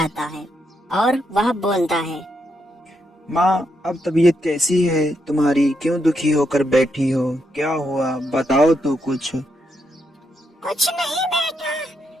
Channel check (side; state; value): both; normal; correlation 0.80